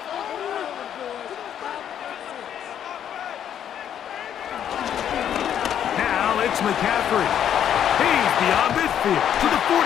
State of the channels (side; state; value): right; quieter; 9.6 dB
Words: Now it's McCaffrey. He's beyond midfield to the